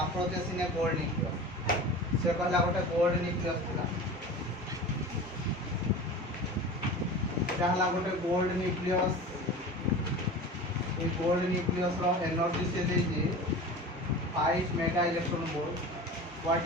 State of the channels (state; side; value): normal; both; correlation 0.35